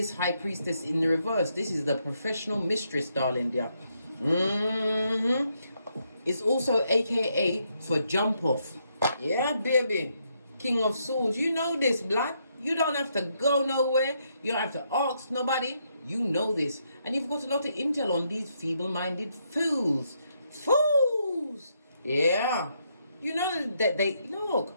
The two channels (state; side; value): inverted; both; correlation -0.77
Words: High Priestess in the reverse. This is the professional mistress, darling dear. It's also AKA for jump off. Yeah, baby. King of Swords. You know this, blood. You don't have to go nowhere. You don't have to ask nobody. You know this. And you've got a lot of intel on these feeble-minded fools. Fools! Yeah. You know that they... Look.